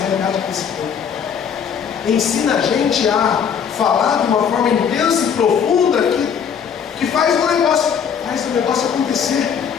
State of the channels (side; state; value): right; quieter; 7.4 dB